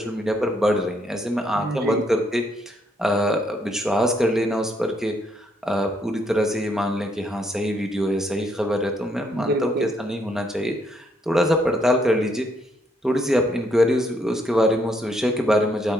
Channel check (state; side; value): normal; both; correlation 0.72